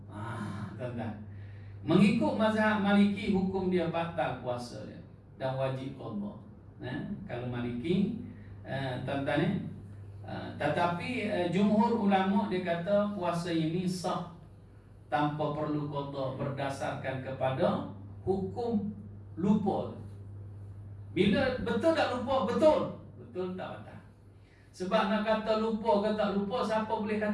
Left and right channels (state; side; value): identical; both; correlation 1.00